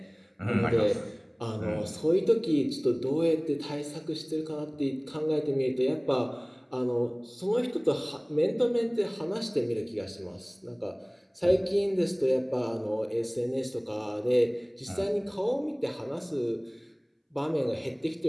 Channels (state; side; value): identical; both; correlation 1.00